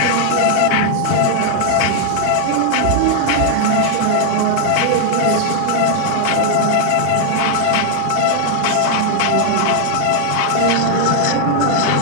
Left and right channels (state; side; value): different; both; correlation 0.00